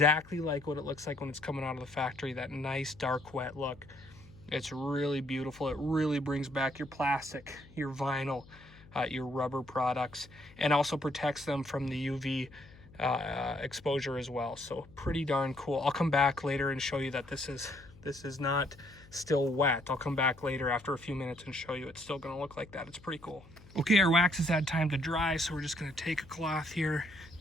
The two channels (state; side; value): noise; left; hum, 22 dB below the sound